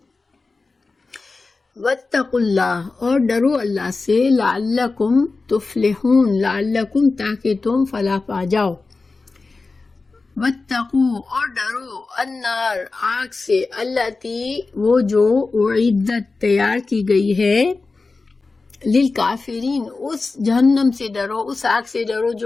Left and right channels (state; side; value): quieter; right; 3.8 dB